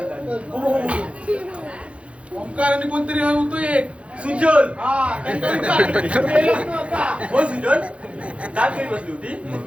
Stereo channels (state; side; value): late; left; 0.061 ms